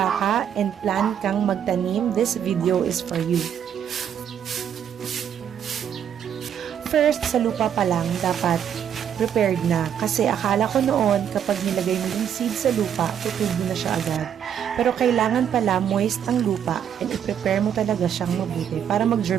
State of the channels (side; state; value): left; quieter; 8.9 dB